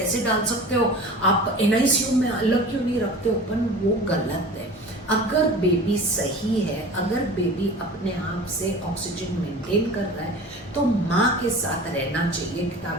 डाल सकते हो, आप NICU में अलग क्यों नहीं रखते हो? पर वो गलत है। अगर बेबी सही है, अगर बेबी अपने आप से ऑक्सीजन मेंटेन कर रहा है, तो माँ के साथ रहना चाहिए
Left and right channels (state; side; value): normal; both; correlation 0.38